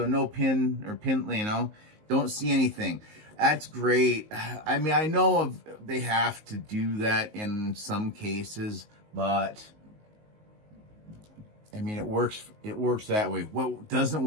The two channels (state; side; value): late; left; 19 ms